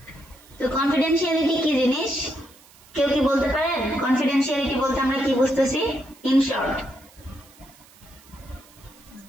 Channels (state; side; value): noise; right; hiss, 26 dB below the sound